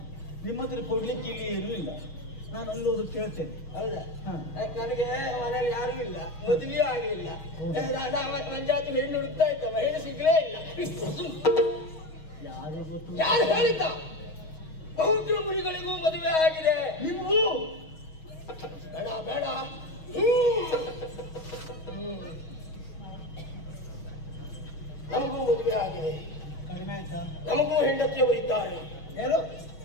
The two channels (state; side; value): late; right; 6.3 ms